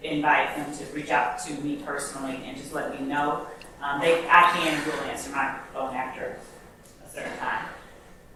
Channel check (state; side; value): identical; both; correlation 1.00